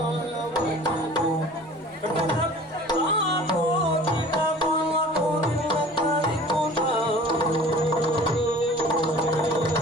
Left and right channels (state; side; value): normal; both; correlation 0.45